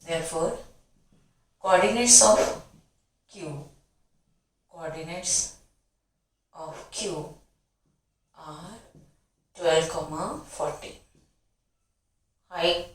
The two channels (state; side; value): identical; both; correlation 1.00